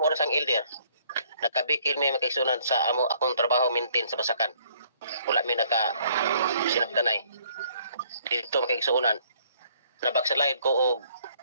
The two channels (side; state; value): both; inverted; correlation -0.63